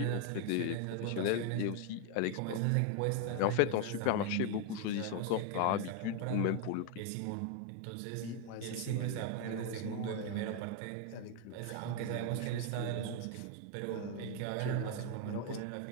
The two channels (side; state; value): both; different; correlation 0.01